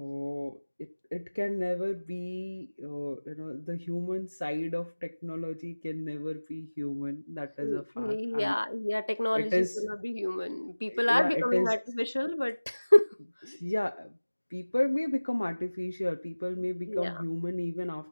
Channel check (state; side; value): inverted; both; correlation -1.00